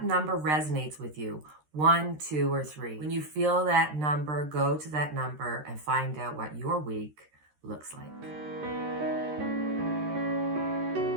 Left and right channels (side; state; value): left; late; 13 ms